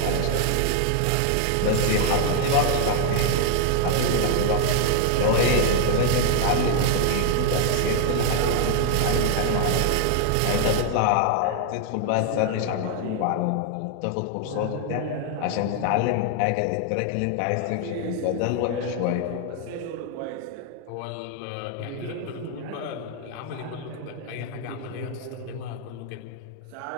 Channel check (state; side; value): different; both; correlation 0.00